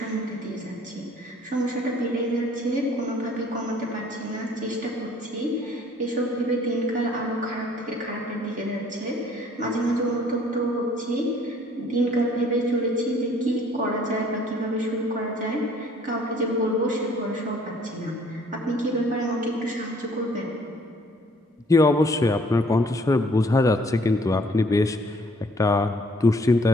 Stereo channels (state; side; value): normal; both; correlation 0.58